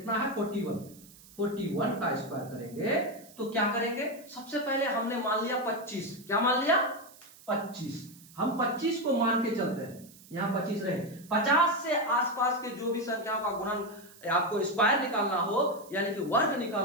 है? 41। 41 का स्क्वायर करेंगे तो क्या करेंगे? सबसे पहले हमने मान लिया 25। क्या मान लिया? 25। हम 25 को मान के चलते हैं, यहां 25 रहे। 50 से आसपास के जो भी संख्याओं का गुणन आपको स्क्वायर निकालना हो यानी कि वर्ग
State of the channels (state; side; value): noise; right; hiss, 22 dB below the sound